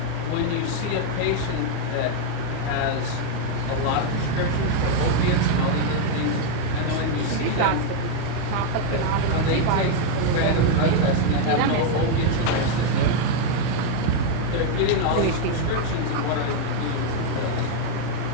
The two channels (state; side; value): different; both; correlation 0.01